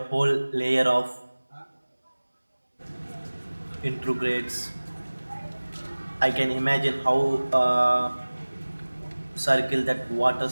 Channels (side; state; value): both; inverted; correlation -1.00